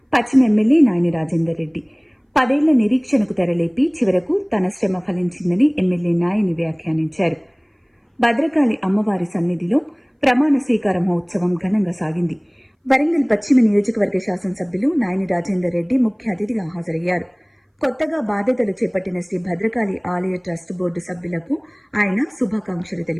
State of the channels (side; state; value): both; identical; correlation 1.00